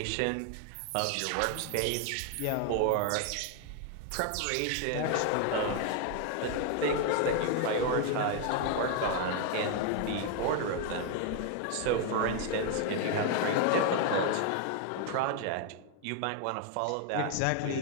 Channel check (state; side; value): different; both; correlation 0.00